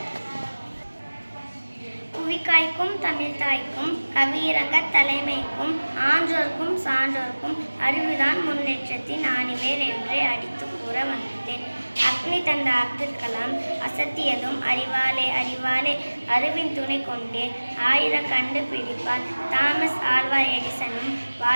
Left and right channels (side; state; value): both; inverted; correlation -1.00